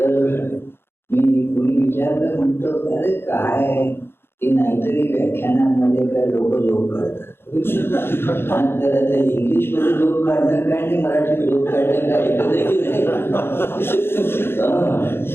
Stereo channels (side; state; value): right; late; 0.11 ms